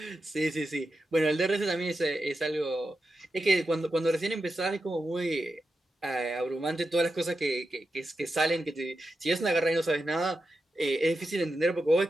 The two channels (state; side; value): normal; both; correlation 0.89